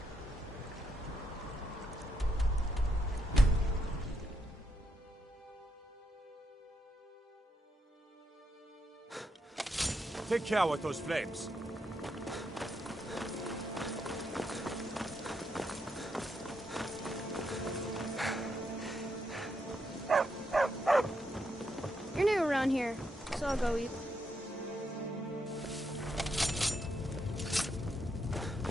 Take care with those flames. You're new around here, so I'll go eat.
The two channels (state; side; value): normal; both; correlation 0.80